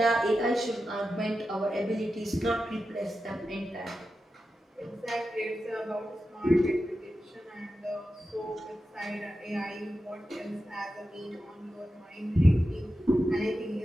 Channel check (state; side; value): normal; both; correlation 0.91